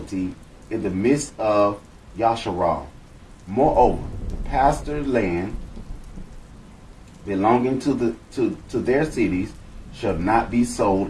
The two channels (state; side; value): identical; both; correlation 1.00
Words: in the midst of Yasharal. Moreover, the pasture land belonging to their cities shall not be